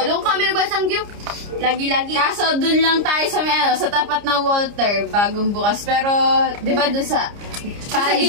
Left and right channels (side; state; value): left; late; 29 ms